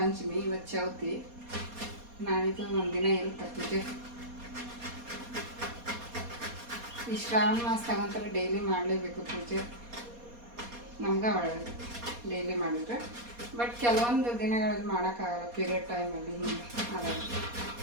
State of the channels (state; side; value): late; left; 4.2 ms